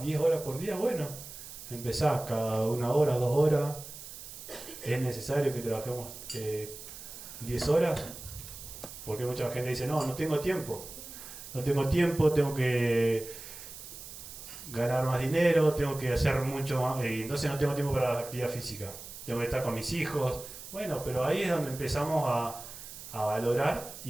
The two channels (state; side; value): noise; right; hiss, 13 dB below the sound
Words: 10 horas por día? Bueno, empezás cada 1 hora, 2 horas. ¿Es necesario que trabajemos 10 horas? Porque mucha gente dice, no tengo tiempo. No tengo tiempo, tengo que ganar más dinero, tengo que hacer mucho más, y entonces no tengo tiempo para la actividad física. Tengo que estar con mis hijos. Bueno, pero ahí es donde empezamos a valorar